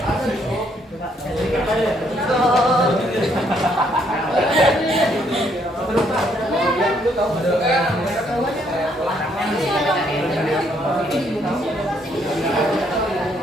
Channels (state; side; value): normal; both; correlation 0.70